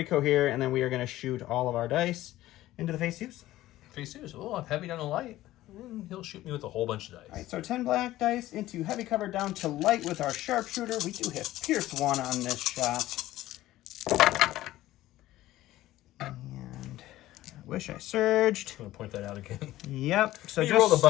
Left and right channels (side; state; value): right; quieter; 15.5 dB